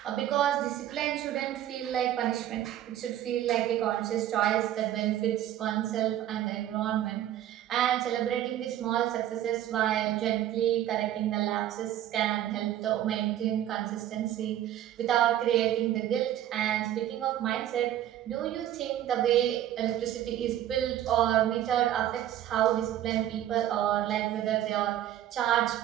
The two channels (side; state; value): left; quieter; 12.0 dB